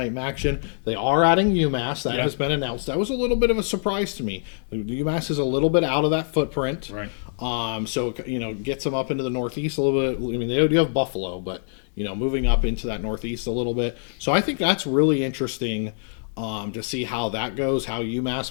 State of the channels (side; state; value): right; silent; digital silence